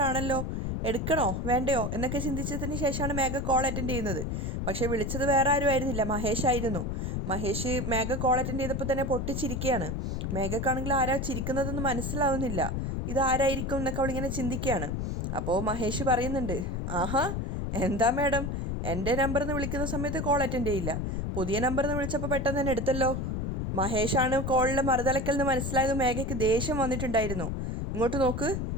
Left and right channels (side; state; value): left; noise; rumble, 2 dB below the sound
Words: ആണല്ലോ, എടുക്കണോ വേണ്ടയോ എന്നൊക്കെ ചിന്തിച്ചതിന് ശേഷമാണ് മേഘ കോൾ അറ്റൻഡ് ചെയ്യുന്നത്. പക്ഷേ വിളിച്ചത് വേറെ ആരും ആയിരുന്നില്ല, മഹേഷ് ആയിരുന്നു. മഹേഷ് മേഘ കോൾ അറ്റൻഡ് ചെയ്തപ്പോൾ തന്നെ പൊട്ടിച്ചിരിക്കുകയാണ്. മേഘക്കാണെങ്കിൽ ആരാ ചിരിക്കുന്നതെന്ന് മനസ്സിലാവുന്നില്ല. ഇതാരായിരിക്കും എന്നൊക്കെ അവളിങ്ങനെ ചിന്തിക്കുകയാണ്. അപ്പോൾ മഹേഷ് പറയുന്നുണ്ട്, ആഹാ എന്താ മാഡം, എൻ്റെ നമ്പറിൽ നിന്ന് വിളിക്കുന്ന സമയത്ത് കോൾ അറ്റൻഡ് ചെയ്യില്ല, പുതിയ നമ്പറിൽ നിന്ന് വിളിച്ചപ്പോൾ പെട്ടെന്ന് തന്നെ എടുത്തല്ലോ. മഹേഷാണ് കോളിലെ മറുതലക്കൽ നിന്ന് മനസ്സിലായത്. മേഘയ്ക്ക് ദേഷ്യം വന്നിട്ടുണ്ടായിരുന്നു. ഇങ്ങോട്ട് നോക്ക്,